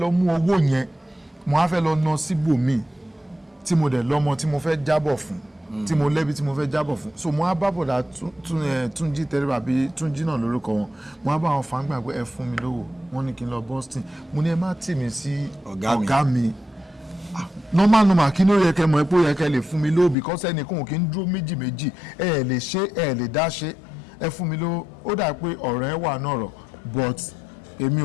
mú owó yẹn mo wá fẹ́ lọ ná síbòmíì tí mo dẹ̀ lọ́mọ tí mo fẹ́ jábọ̀ fún tí mo lẹ́bi tí mo fẹ́ jábọ̀ fún so mo á bá bọ̀dà Túnjí tẹ́lẹ̀ àbí Túnjí náà lórúkọ wọn mo á bá wọn fàǹgbà pé ẹ fún mi lówó wọ́n ní kí n lọ Boston mo ní ẹ má tì mí sí ọ̀gá mi normal kí ló yẹ kẹ́ mọ̀ pé ó yẹ kẹ́ lè fún mi lówó because ẹnìkan kì í dúró méjì ẹ lè ṣe ẹ lè dá ṣe ẹ fún mi lówó ó dà pé ọ̀rọ̀ ẹ wà náà rọ̀ but èmi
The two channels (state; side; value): drops out; right; at 20.2 s